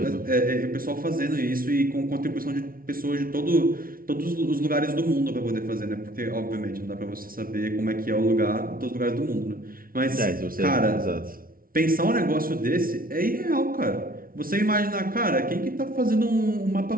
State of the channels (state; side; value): late; left; 0.42 ms